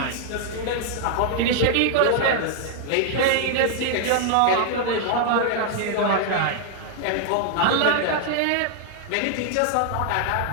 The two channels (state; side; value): different; both; correlation 0.00